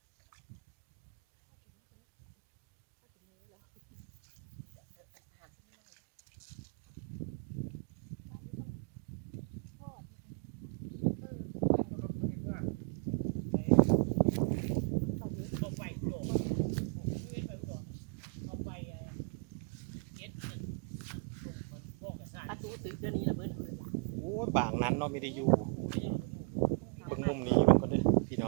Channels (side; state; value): left; quieter; 38.0 dB